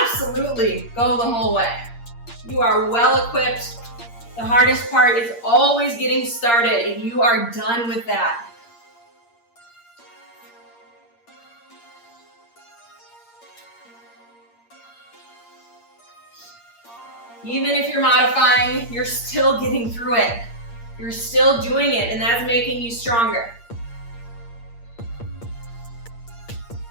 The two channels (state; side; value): late; right; 8.6 ms